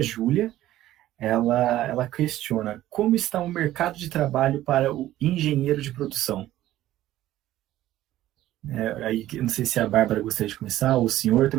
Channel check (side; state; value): left; quieter; 14.2 dB